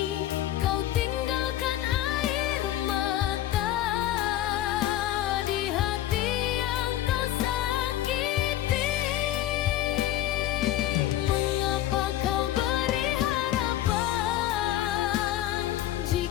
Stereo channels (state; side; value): quieter; right; 13.3 dB